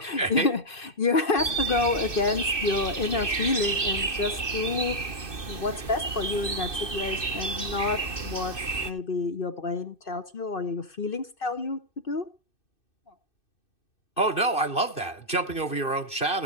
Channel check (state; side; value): late; right; 2.6 ms